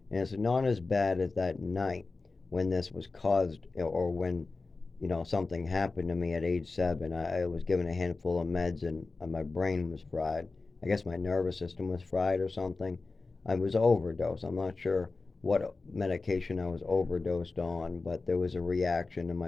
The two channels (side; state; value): right; quieter; 3.8 dB